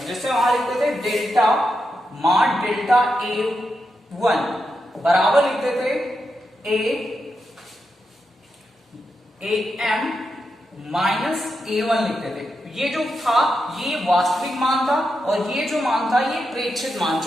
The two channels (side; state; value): both; normal; correlation 0.86